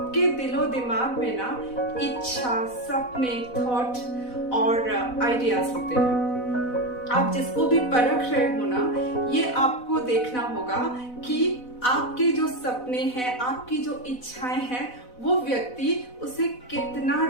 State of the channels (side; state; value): right; late; 4.0 ms